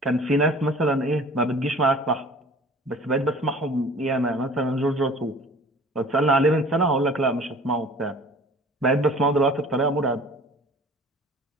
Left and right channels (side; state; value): both; normal; correlation 0.46